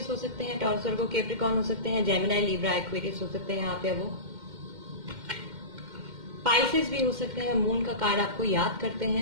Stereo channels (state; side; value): late; left; 2.1 ms